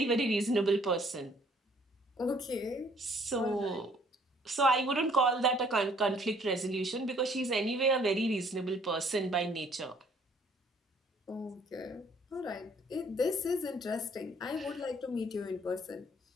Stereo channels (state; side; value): normal; both; correlation 0.61